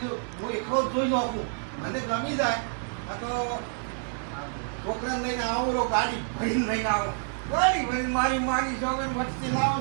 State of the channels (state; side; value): silent; left; digital silence